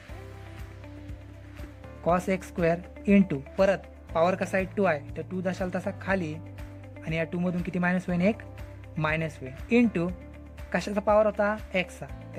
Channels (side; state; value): both; identical; correlation 1.00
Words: cos x square into परत पॉवर कसा आहे? 2 आहे. तर 2 दशाला तसा खाली आणि या 2 मधून किती मायनस होईल? 1 मायनस होईल. इंटू कशाचा पॉवर होता? एक्सचा.